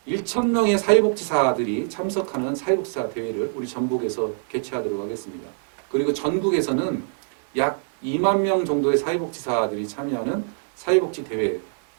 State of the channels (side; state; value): left; silent; digital silence